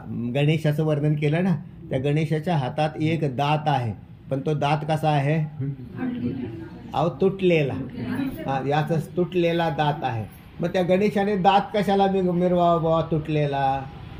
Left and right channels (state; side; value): identical; both; correlation 1.00